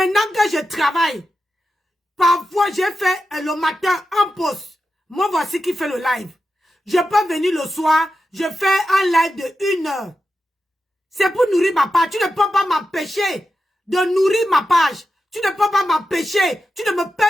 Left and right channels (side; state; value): both; normal; correlation 0.90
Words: que je travaille, parfois j'ai fait le matin en pause. Moi voici qui fait le live. Je peux venir le soir, je fais un live de 1 heure. C'est pour nourrir ma page. Tu ne peux pas m'empêcher de nourrir ma page. Tu ne peux pas m'empêcher. Tu ne me